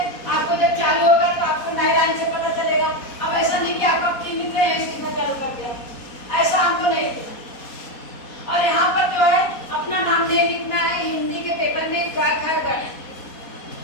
आपको जब चालू होगा तो आपको नए लाइन से पता चलेगा। अब ऐसा नहीं कि आप अपनी लिख रहे हैं सीधा चालू कर दिया, ऐसा हमको नहीं लिखना। और यहाँ पर जो है अपना नाम नहीं लिखना है, हिंदी के पेपर में खैर।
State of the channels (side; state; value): right; late; 4.2 ms